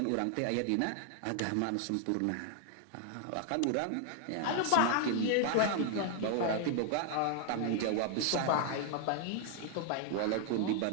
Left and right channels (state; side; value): different; both; correlation 0.00